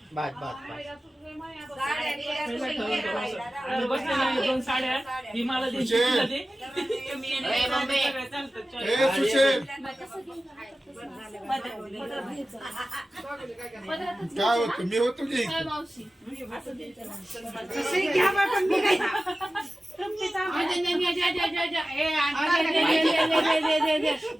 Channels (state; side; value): normal; both; correlation 0.95